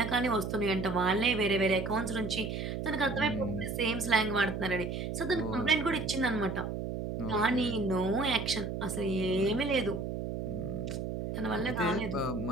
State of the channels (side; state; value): right; noise; hum, 4 dB below the sound